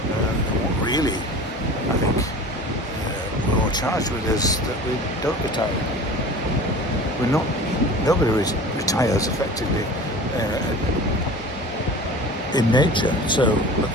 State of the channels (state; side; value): normal; both; correlation 0.39